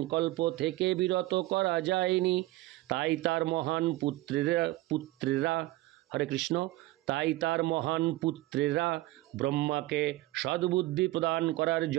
থেকে বিরত করা যায়নি। তাই তার মহান পুত্রেরা হরে কৃষ্ণ তাই তার মহান পুত্রেরা ব্রহ্মাকে সদ্বুদ্ধি প্রদান করার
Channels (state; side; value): quieter; left; 18.4 dB